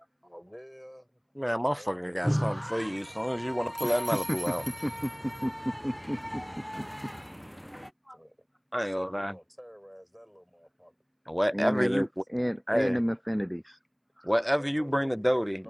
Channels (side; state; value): both; identical; correlation 1.00